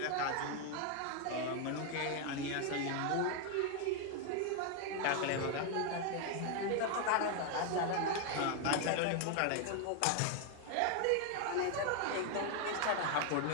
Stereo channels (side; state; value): both; different; correlation 0.01